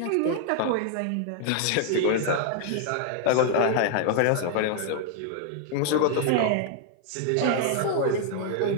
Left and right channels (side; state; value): both; different; correlation 0.00